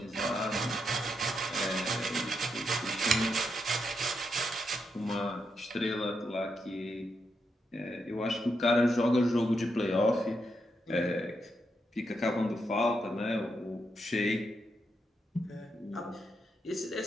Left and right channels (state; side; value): normal; both; correlation 0.82